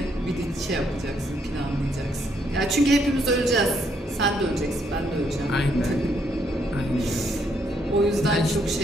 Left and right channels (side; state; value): both; normal; correlation 0.73